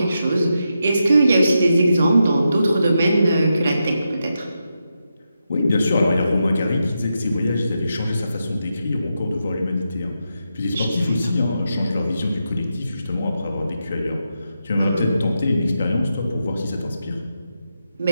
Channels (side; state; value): both; inverted; correlation -0.86